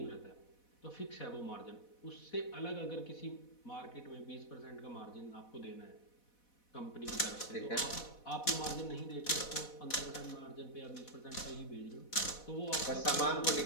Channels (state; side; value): late; right; 4.1 ms